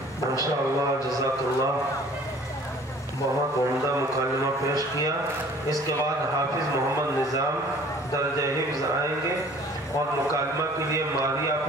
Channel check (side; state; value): both; normal; correlation 0.51